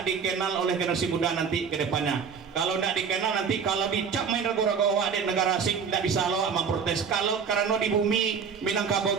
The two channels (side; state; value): left; quieter; 6.3 dB